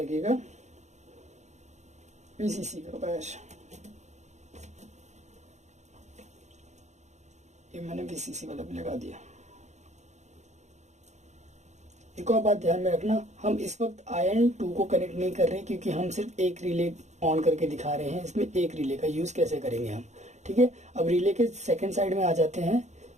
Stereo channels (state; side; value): late; left; 0.33 ms